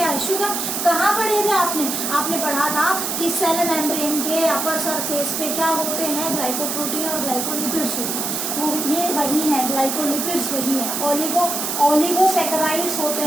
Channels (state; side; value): noise; right; hiss, 2 dB below the sound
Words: है, शुगर। कहाँ पढ़े थे आपने पढ़ा था कि सेल मेम्ब्रेन के अपर सरफेस पे क्या होते हैं, ग्लाइकोप्रोटीन और ग्लाइकोलिपिड्स होते हैं, वो ये वही है, ग्लाइकोलिपिड्स वही है। ओलिगोसैकेराइड्स होते